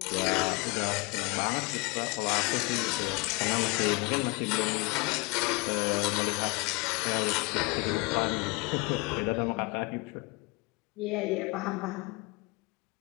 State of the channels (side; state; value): right; quieter; 27.7 dB